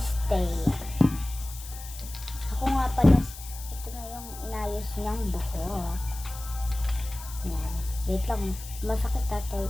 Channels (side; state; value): left; noise; hiss, 14 dB below the sound